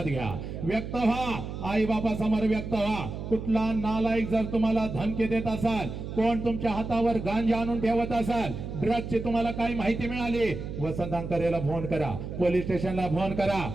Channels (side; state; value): right; noise; hum, 7 dB below the sound